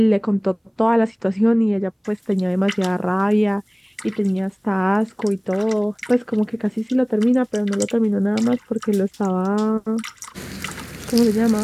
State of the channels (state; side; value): identical; both; correlation 1.00